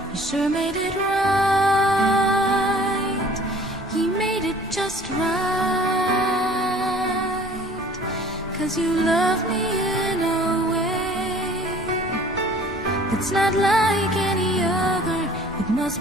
He sure made it right. He made it just right. 'Cause you love me in a way that's not like any other. It must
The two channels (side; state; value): both; normal; correlation 0.50